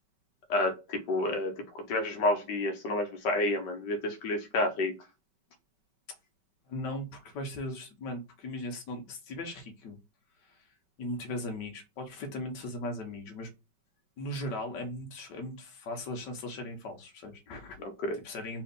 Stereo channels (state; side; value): late; right; 5.3 ms